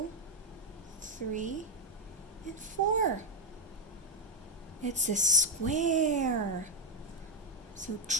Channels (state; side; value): normal; both; correlation 0.05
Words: 3, and 4. It's a square. So